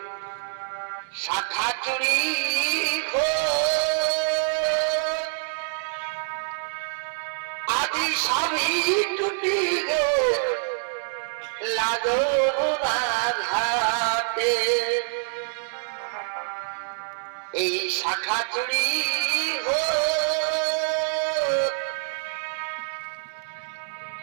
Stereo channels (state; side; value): silent; left; 61 dB below the other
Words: শাখা চুরি আজি সবই টুটি গে লাগোরা ঘাটে এই শাখা চুরি